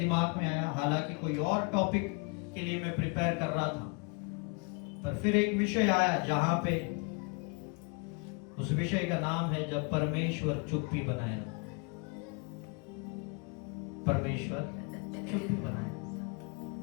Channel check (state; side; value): quieter; right; 31.4 dB